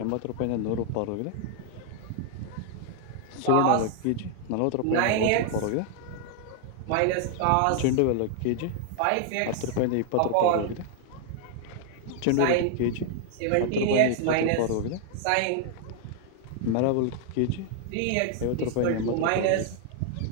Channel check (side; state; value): both; different; correlation 0.00